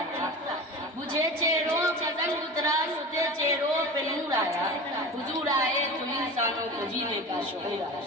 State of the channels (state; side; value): normal; both; correlation 0.32